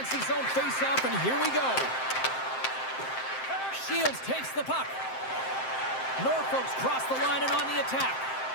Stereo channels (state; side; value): late; right; 7.7 ms